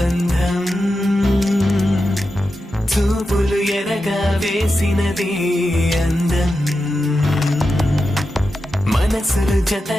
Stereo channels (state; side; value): normal; both; correlation 0.90